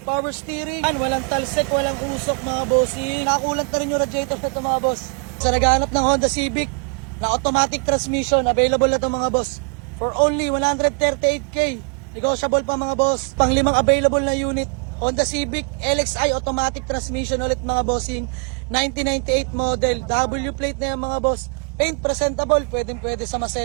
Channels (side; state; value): left; quieter; 38.9 dB